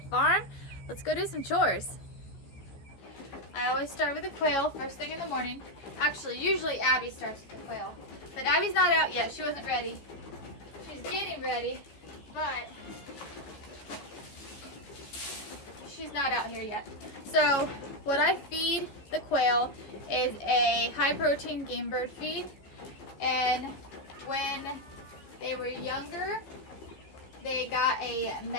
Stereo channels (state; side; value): late; right; 14 ms